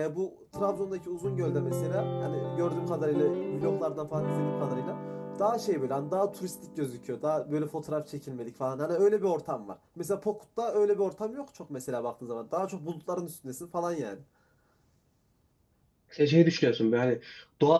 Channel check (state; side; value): identical; both; correlation 1.00